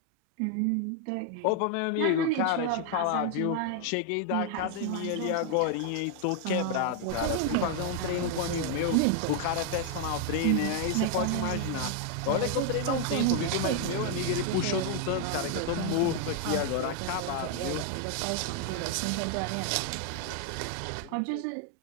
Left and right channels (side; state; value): both; different; correlation 0.00